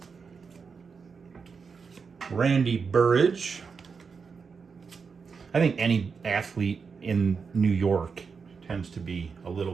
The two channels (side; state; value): left; quieter; 5.5 dB